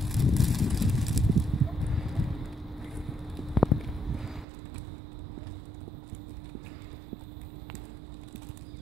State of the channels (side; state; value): left; drops out; at 4.5 s